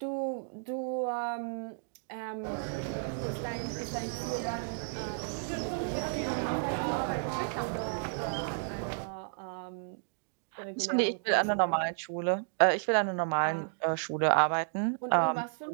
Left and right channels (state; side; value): silent; left; digital silence